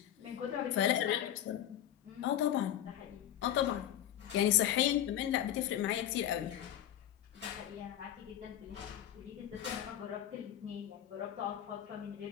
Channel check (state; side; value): quieter; right; 11.4 dB